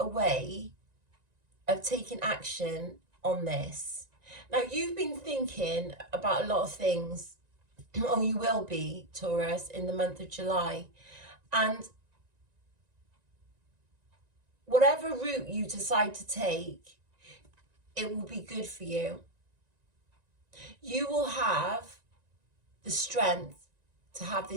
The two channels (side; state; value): left; late; 1.9 ms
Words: way of taking action on this. Now, you've been thinking about a lot of things, or you will be, Taurus, in the month of July. And whatever route you decide to take, it will be good for you. You will have the strength to have